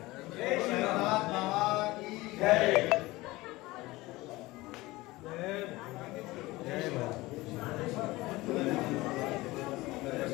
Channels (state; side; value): quieter; right; 20.1 dB